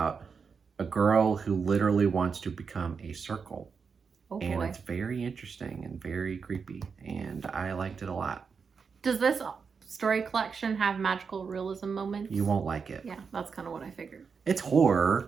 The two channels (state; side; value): quieter; left; 5.7 dB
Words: a girl who literally wants to become a circle. Oh boy. And it's very interesting and very creepy, and I liked it a lot. Does this story collection have magical realism moments? You won't like it. Yeah, that's kind of what I figured. It's